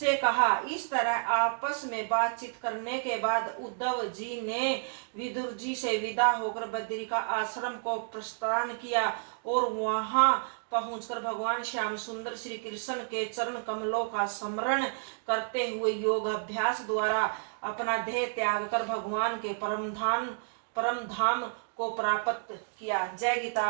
कहा। इस तरह आपस में बातचीत करने के बाद उद्धव जी ने विदुर जी से विदा होकर बद्री का आश्रम को प्रस्थान किया, और वहां पहुंचकर भगवान श्याम सुंदर श्री कृष्ण के चरण कमलों का स्मरण करते हुए योग अभ्यास द्वारा अपना देह त्याग कर भगवान के परम धाम को प्राप्त किया। जय गीता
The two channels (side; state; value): left; silent; digital silence